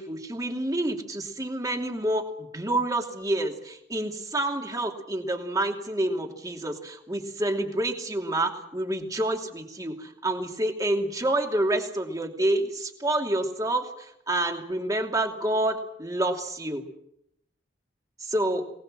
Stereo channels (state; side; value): normal; both; correlation 0.58